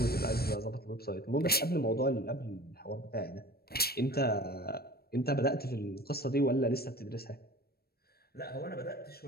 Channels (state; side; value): late; right; 0.45 ms